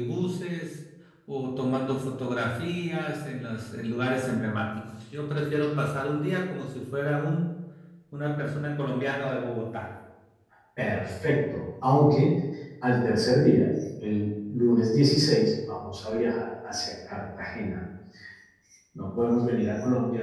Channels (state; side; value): identical; both; correlation 1.00